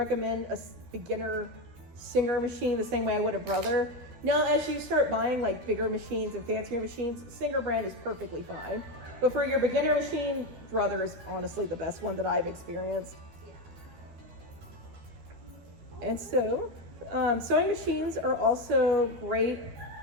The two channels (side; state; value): left; late; 12 ms